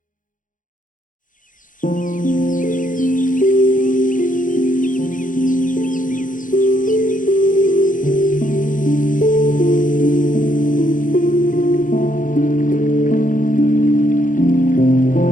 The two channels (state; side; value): late; right; 0.38 ms